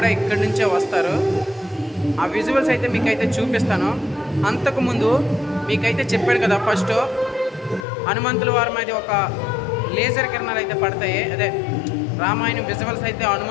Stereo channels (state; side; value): drops out; right; at 7.9 s